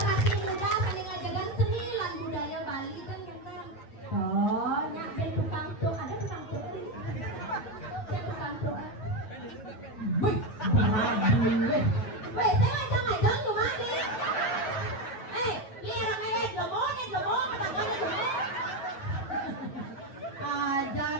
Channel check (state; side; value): late; right; 9.1 ms